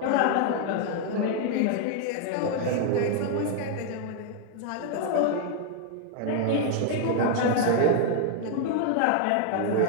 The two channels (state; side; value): different; both; correlation 0.00